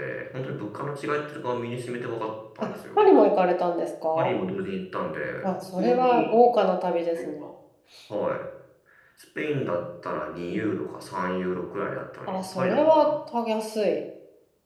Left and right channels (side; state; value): both; identical; correlation 1.00